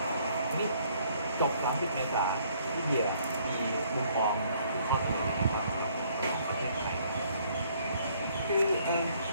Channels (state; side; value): inverted; both; correlation -0.63